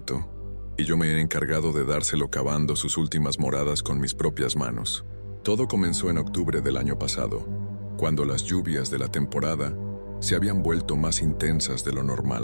y yo me he encargado de dárselo cavando sus últimas moradas con mis propias manos. Todo comenzó en octubre del año pasado, cuando las lluvias de la temporada se habían vuelto más intensas de lo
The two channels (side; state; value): both; inverted; correlation -1.00